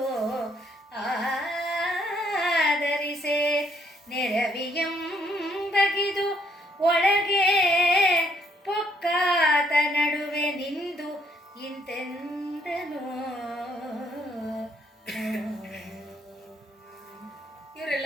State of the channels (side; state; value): both; normal; correlation 0.69